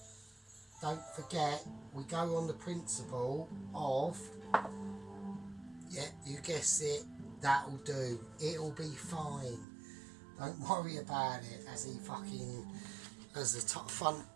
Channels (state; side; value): drops out; left; at 9.7 s